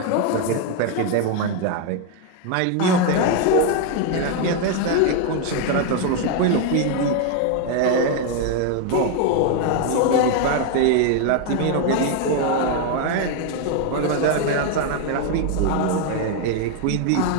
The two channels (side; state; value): both; different; correlation 0.01